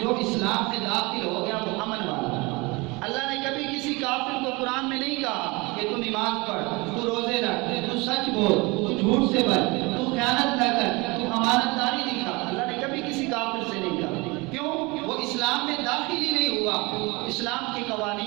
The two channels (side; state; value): left; quieter; 25.4 dB